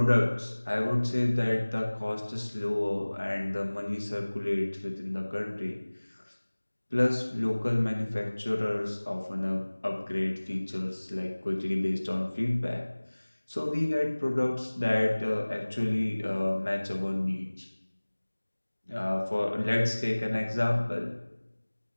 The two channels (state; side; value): inverted; both; correlation -1.00